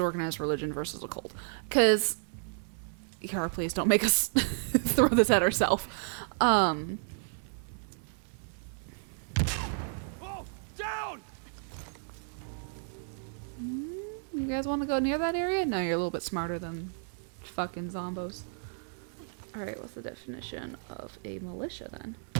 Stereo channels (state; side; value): silent; left; 56 dB below the other